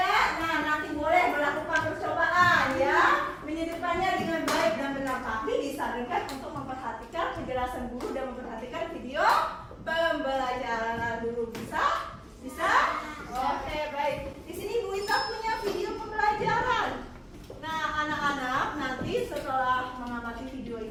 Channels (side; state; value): both; identical; correlation 1.00